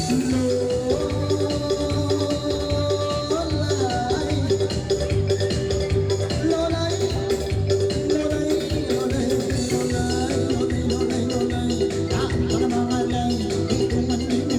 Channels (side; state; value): both; identical; correlation 1.00